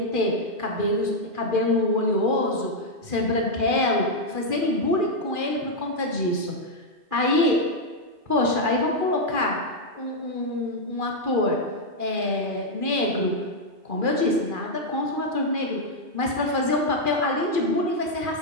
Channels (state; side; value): late; left; 2.4 ms